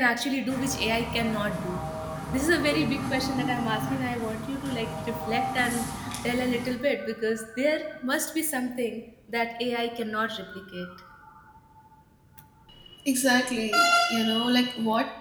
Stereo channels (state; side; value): identical; both; correlation 1.00